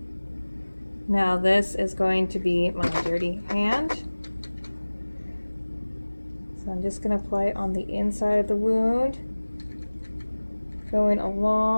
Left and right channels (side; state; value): both; inverted; correlation -1.00